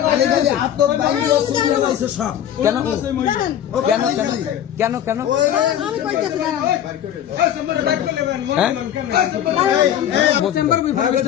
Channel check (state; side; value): quieter; right; 10.5 dB